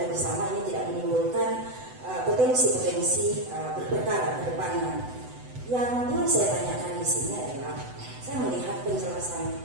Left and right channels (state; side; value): late; left; 8.0 ms